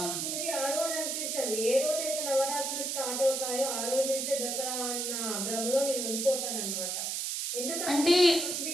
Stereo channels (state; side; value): noise; right; hiss, 1 dB below the sound